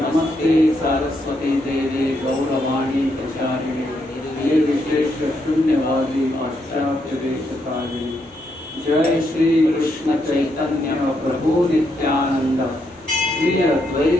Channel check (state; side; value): normal; both; correlation 0.78